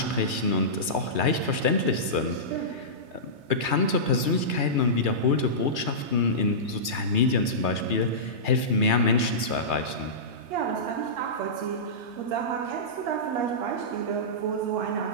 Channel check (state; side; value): late; left; 3.2 ms